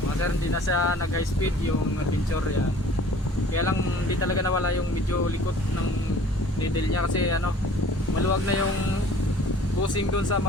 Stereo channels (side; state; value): both; normal; correlation 0.50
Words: Mga sir, hindi na siya nag high speed yung adventure yan. Kaya lang hindi talaga nawala yung medyo likot ng needle niya kasi ano, maluwag na yung bushing doon sa